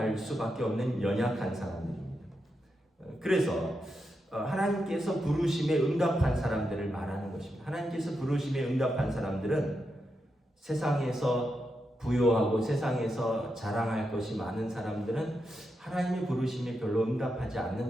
수밖에 없는 연약한 사람들입니다. 그래서 하나님께서 부르심에 응답한 사람들을 말하는 것입니다. 하나님께서 부르심에 응답한 사람들은 세상에서 부요하고 세상에서 자랑할 것이 많은 사람들은 하나님의 부르심에 별로 응답하지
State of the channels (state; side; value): normal; both; correlation 0.86